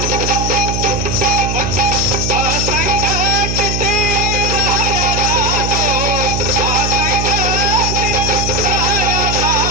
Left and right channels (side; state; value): right; noise; hum, 2 dB below the sound